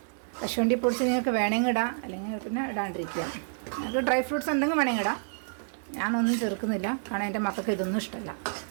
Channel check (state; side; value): silent; left; digital silence